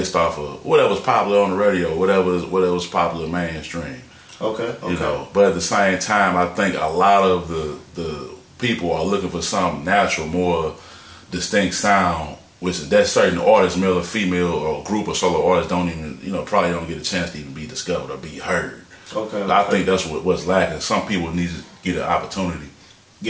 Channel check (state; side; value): identical; both; correlation 1.00